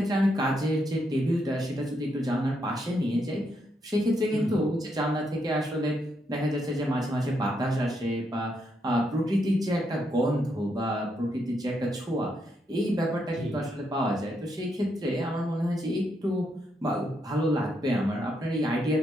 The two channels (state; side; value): normal; both; correlation 0.79